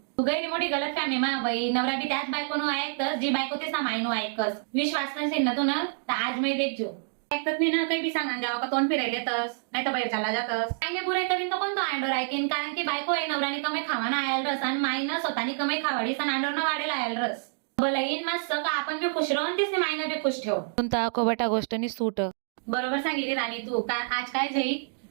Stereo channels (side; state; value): left; silent; digital silence